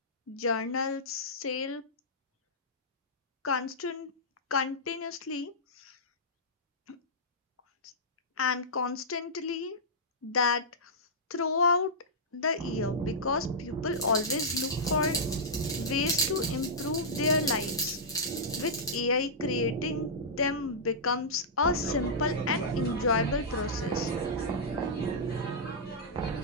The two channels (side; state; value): both; normal; correlation -0.13